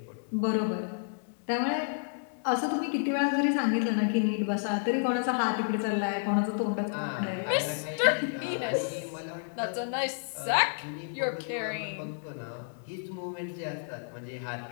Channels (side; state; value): right; silent; 57 dB below the other